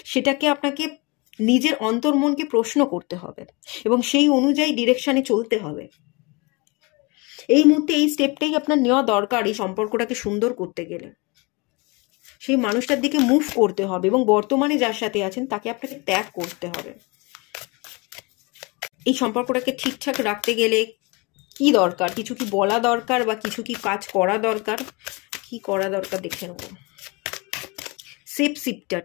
সেটাকে আপনাকে নিজের অন্তর্মনকে প্রশ্ন করতে হবে, এবং সেই অনুযায়ী ডিরেকশনে চলতে হবে। এই মুহূর্তে এই স্টেপটাই আপনার নেওয়া দরকার এই সম্পর্কটাকে সুন্দর করতে গেলে। সেই মানুষটার দিকে মুভ করতে হবে, এবং বর্তমানে যার সাথে আছেন তাকে আপনাকে ত্যাগ করতে হবে। এই সম্পর্কটাকে ঠিকঠাক রাখতে গেলে কি দরকার, কিছু কি বলা দরকার, বা কিছু কি কাজ করা দরকার, কি করা দরকার দেখে নেব। Safe shifter,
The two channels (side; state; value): right; quieter; 27.6 dB